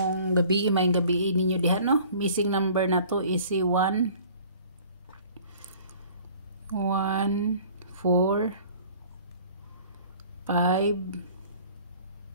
gabi ninyo diha no. Missing number na to is si 1 4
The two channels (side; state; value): both; inverted; correlation -0.50